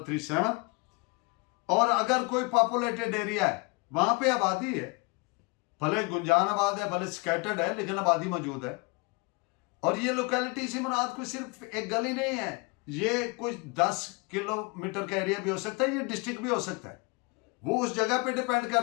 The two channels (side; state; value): right; quieter; 29.1 dB